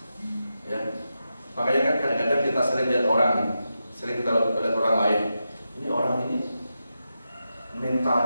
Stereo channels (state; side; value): inverted; both; correlation -0.89